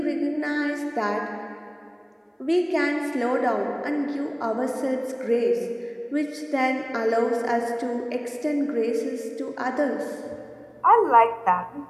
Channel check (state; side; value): identical; both; correlation 1.00